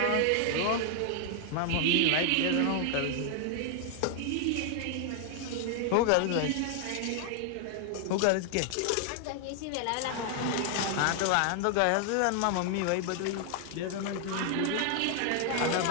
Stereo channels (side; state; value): both; different; correlation 0.00